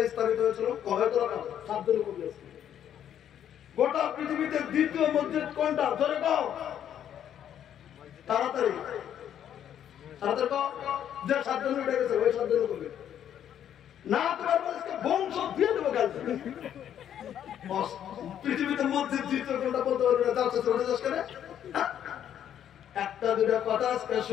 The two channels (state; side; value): quieter; right; 9.9 dB